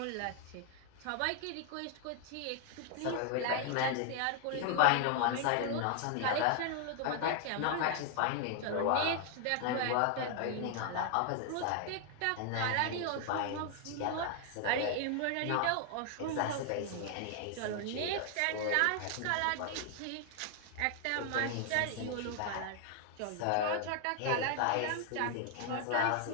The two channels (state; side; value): different; both; correlation 0.00